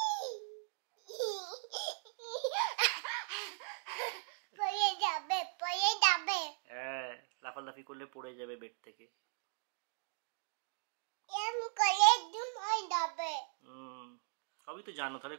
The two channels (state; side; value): silent; left; 52 dB below the other